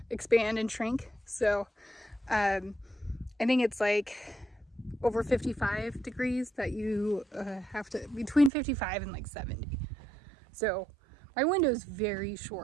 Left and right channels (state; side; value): drops out; left; at 8.5 s